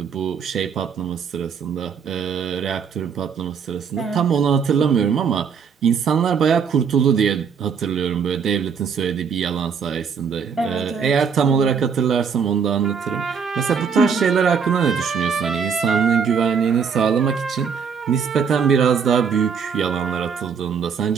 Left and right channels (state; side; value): quieter; left; 6.5 dB